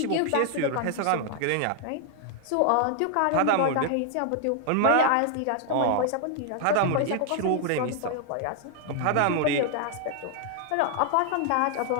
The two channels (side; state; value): both; different; correlation 0.00